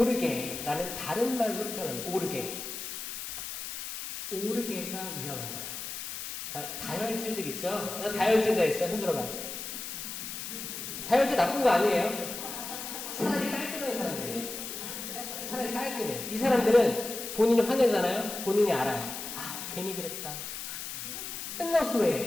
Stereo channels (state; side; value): noise; left; hiss, 7 dB below the sound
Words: 다른 말로 표현합니다. 오르게가 위험한 거예요. 자, 다혈질들 있죠? 다혈질 다 있어요. 손 들어봐요. 다혈질 나쁜 거 아니에요. 차라리 깔끔한 사람들이에요. 차라리 깔끔해. 이 사람들은 본인이 화내잖아요. 본인이 알아요. 괜히 그랬다. 끝났어